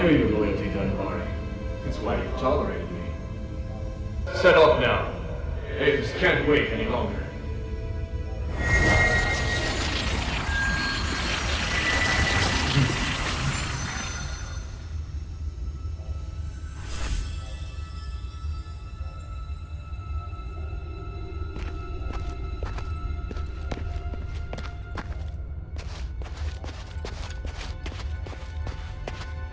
your loyalty, Dunbari. That's why you've tolerated me. Set off now. Avis can't wait any longer.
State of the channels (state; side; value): identical; both; correlation 1.00